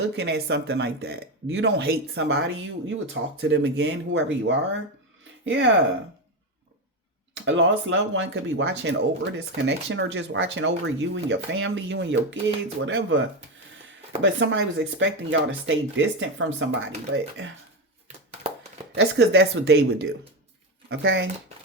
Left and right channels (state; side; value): normal; both; correlation 0.14